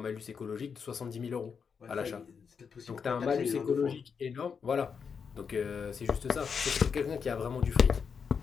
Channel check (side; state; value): right; quieter; 6.2 dB